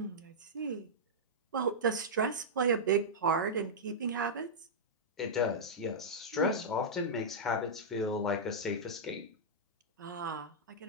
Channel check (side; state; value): both; normal; correlation -0.10